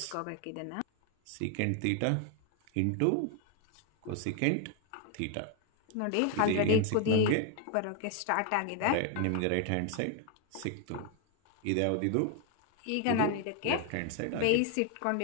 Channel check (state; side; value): different; both; correlation 0.01